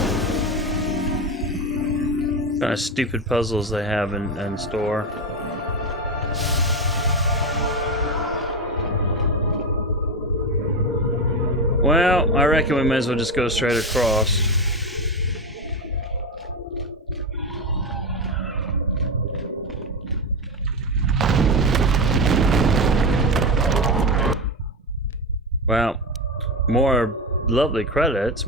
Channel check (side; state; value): both; normal; correlation 0.17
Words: puzzles they have in store. Well, I reckon we may as well just go straight across. Well, more lovely credits.